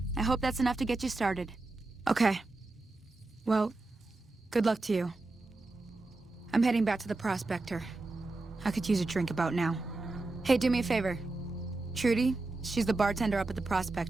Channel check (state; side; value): quieter; left; 3.2 dB